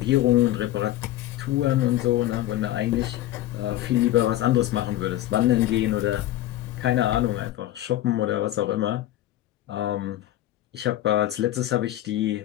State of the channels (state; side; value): quieter; right; 14.1 dB